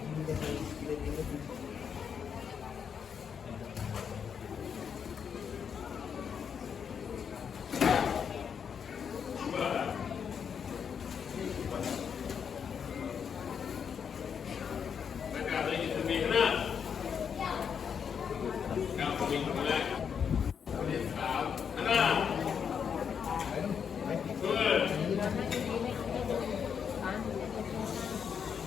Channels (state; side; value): quieter; right; 7.2 dB